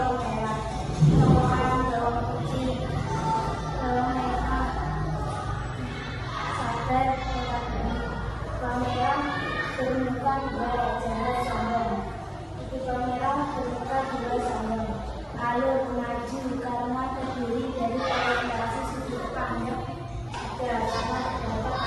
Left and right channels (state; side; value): identical; both; correlation 1.00